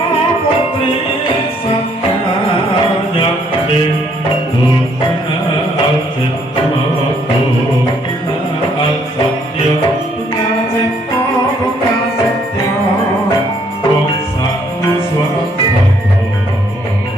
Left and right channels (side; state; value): both; normal; correlation 0.67